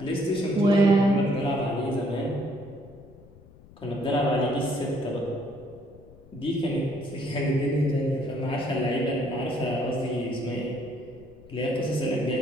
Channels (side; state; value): left; noise; rumble, 23 dB below the sound